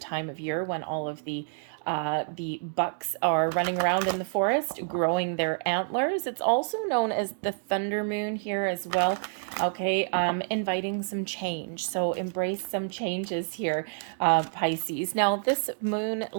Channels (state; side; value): silent; left; digital silence